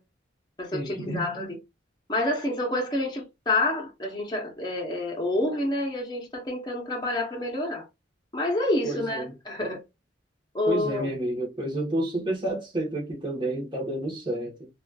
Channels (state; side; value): normal; both; correlation 0.40